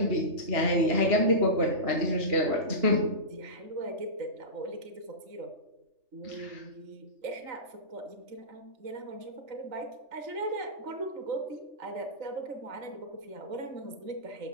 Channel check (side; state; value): left; late; 3.4 ms